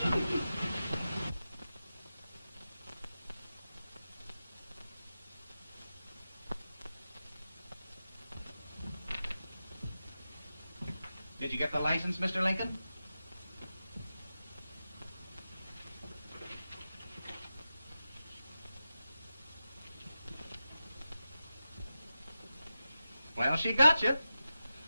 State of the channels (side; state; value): both; inverted; correlation -0.93